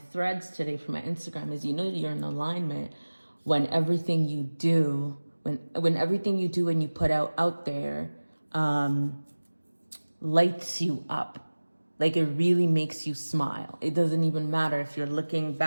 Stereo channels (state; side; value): inverted; both; correlation -1.00